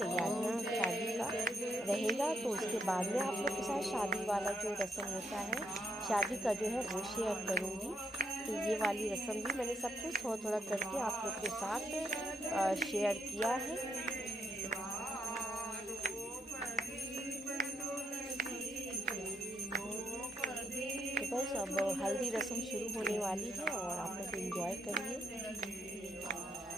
शादी का रहेगा। तो उसके बाद में आप लोग के साथ शादी वाला जो रस्म होता है शादी का जो है वो शेयर करूँगी। तो ये वाली रस्म भी मैंने सब कुछ थोड़ा थोड़ा करके आप लोग के साथ शेयर किया है। तो बस अब हल्दी रस्म शुरू होने वाली है और आप लोग एंजॉय करिए।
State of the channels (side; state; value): both; normal; correlation 0.76